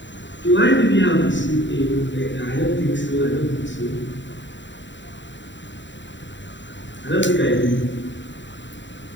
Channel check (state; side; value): late; right; 0.53 ms